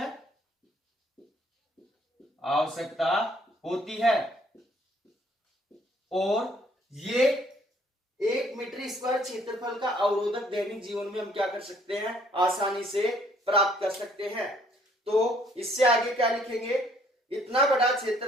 है। और ये 1 मीटर स्क्वायर क्षेत्रफल का अवरोधक दैनिक जीवन में हम क्या कर सकते हैं? आसानी से प्राप्त कर सकते हैं। तो इससे आगे क्या लिखेंगे? इतना बड़ा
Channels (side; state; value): both; normal; correlation 0.63